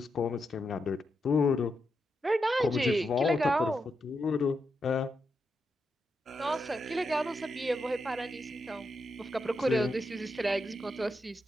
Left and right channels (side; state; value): both; normal; correlation 0.85